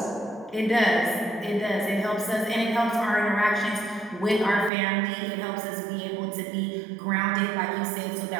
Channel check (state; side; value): drops out; left; at 4.7 s